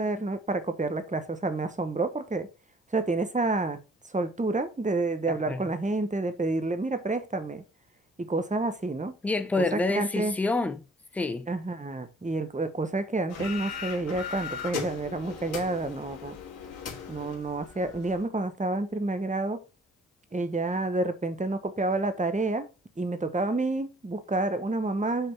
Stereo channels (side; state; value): both; normal; correlation 0.57